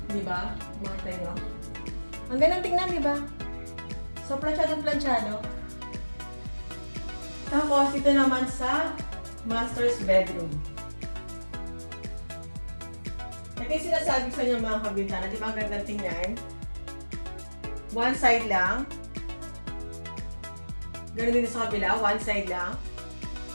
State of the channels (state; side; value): inverted; both; correlation -1.00